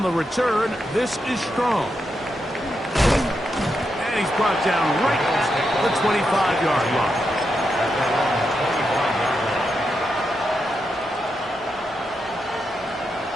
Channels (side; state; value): both; normal; correlation 0.85